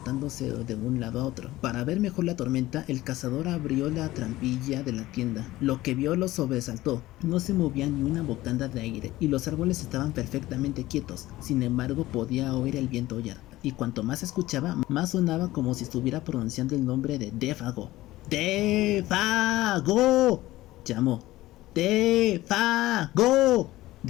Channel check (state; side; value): quieter; right; 17.0 dB